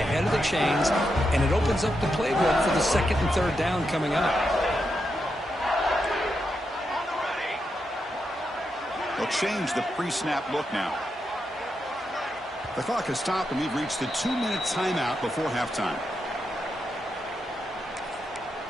ahead of the chains, and it opens up the playbook for the second and third down coming up. They'll change the pre-snap look now. The clock has stopped, and we've reached the 2-minute timeout before halftime.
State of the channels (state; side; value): normal; both; correlation 0.85